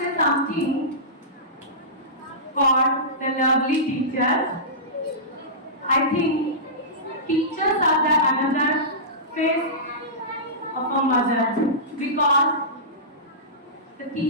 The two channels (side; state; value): both; normal; correlation -0.19